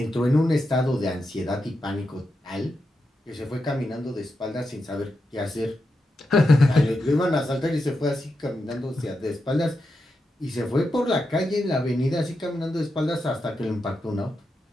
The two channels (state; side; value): normal; both; correlation 0.87